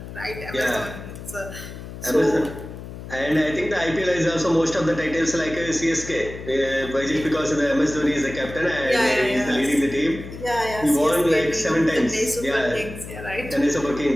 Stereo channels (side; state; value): left; noise; hum, 12 dB below the sound